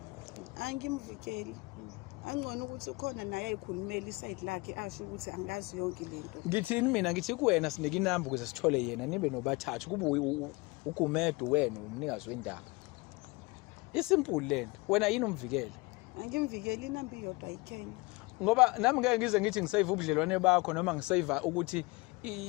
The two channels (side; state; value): right; quieter; 25.3 dB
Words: Angimvikeli. Angcono ukuthi ukhona naye ayikhulumela iside lakhe asho ukuthi angazi yonke lento. Ngithini mina ngithi kuwena sinike inamba ukuze sithole yena nibe nobathathu kube uGumedu wena umnikazi wendaba. Isimple lento. Wena yini umvikela? Angimvikeli inamba iyodwa ayikhenye. Ngoba nami ngeke ngize ngithi ngisave ubudlelwane bakho noma ngisave ukuthi